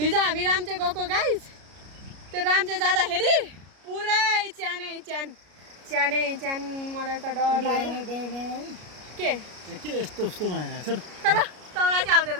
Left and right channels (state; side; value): late; left; 33 ms